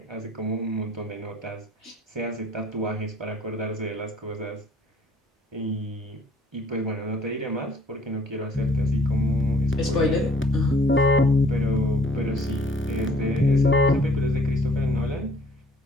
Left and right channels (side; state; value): both; normal; correlation 0.58